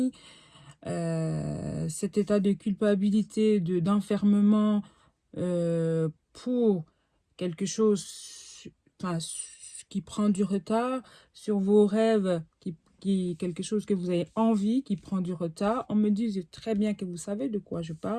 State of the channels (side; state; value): both; identical; correlation 1.00